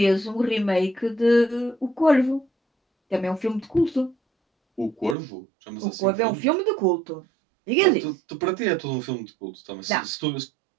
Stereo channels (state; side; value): drops out; left; at 5.2 s